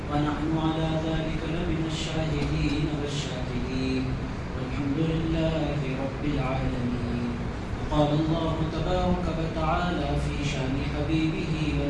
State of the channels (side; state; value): both; identical; correlation 1.00